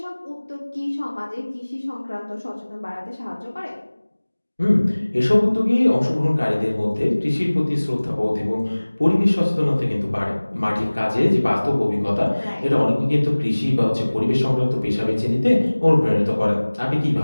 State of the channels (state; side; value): inverted; both; correlation -1.00